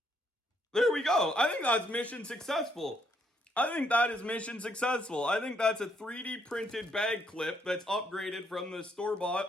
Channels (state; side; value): normal; both; correlation 0.72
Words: There we go. I think that's mission successful. I think that is mission successful. I think that's a 3D printed bag clip that's upgraded from the store-bought.